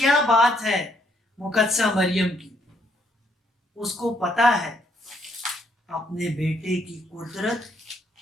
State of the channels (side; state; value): both; normal; correlation 0.70